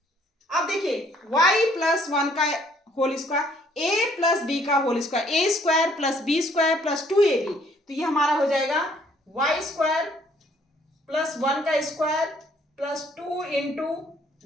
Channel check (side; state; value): both; normal; correlation 0.63